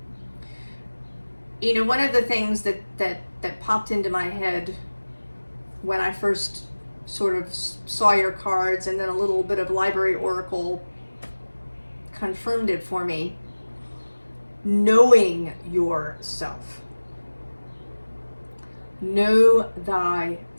You know, one of the things that popped into my head when I first sort of saw your cards, and then a little bit of library oracle confirmed it for me, knowing yourself. Know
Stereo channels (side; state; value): both; inverted; correlation -1.00